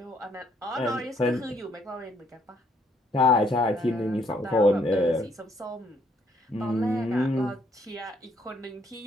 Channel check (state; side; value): normal; both; correlation 0.69